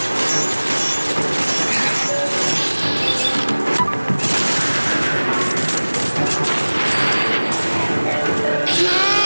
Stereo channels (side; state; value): both; inverted; correlation -1.00